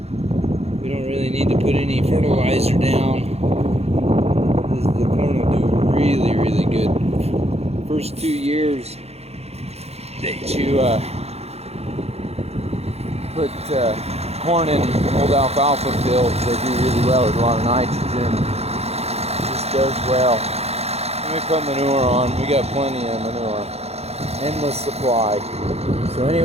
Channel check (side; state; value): left; late; 0.30 ms